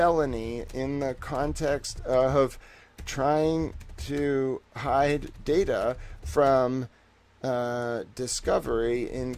in the context of trying to hide data from discovery in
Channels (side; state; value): both; identical; correlation 1.00